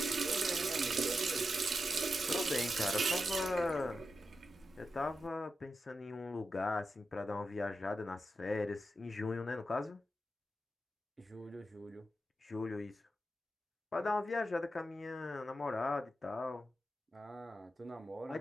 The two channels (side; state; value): both; normal; correlation 0.88